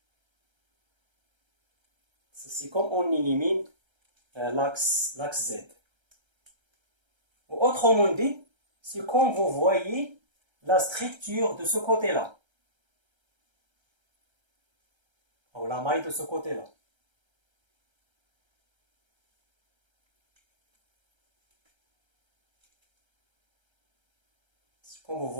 C'est comme on élimine l'axe Z. Autrement dit, c'est comme vous voyez la structure de ce côté-là. Ou la maille de ce côté-là. C'est comme vous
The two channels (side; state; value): left; late; 1.3 ms